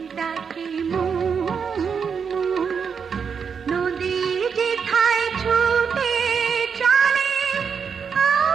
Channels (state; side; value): quieter; left; 6.4 dB